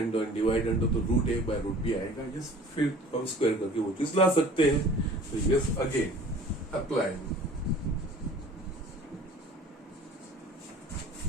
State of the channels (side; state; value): both; normal; correlation 0.47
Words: और dividend तो root A by root B आएगा। Yes फिर हम square करके वो चीज ला सकते हैं। तो yes again applying